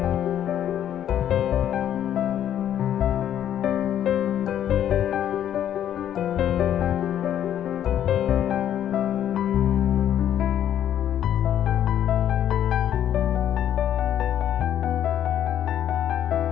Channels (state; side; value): quieter; right; 10.6 dB